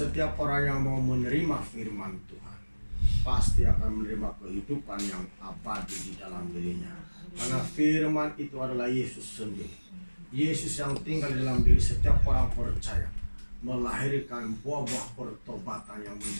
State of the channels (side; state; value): both; inverted; correlation -1.00